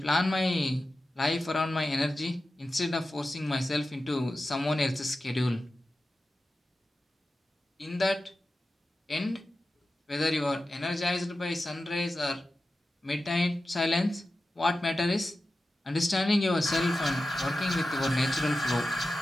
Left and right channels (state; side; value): normal; both; correlation 0.93